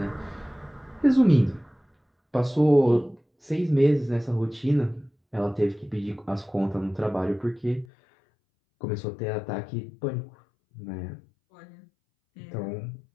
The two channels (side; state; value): right; drops out; at 7.9 s